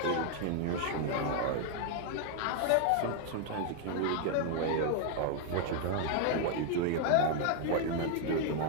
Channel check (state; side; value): different; both; correlation 0.00